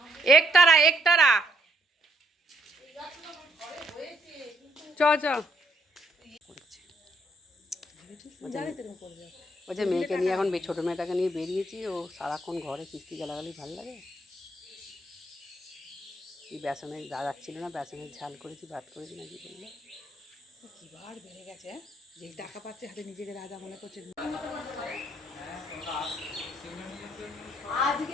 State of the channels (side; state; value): both; normal; correlation 0.71